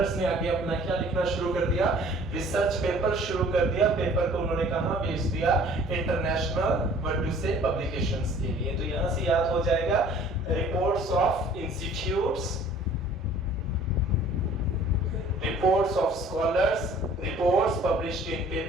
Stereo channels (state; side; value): normal; both; correlation 0.52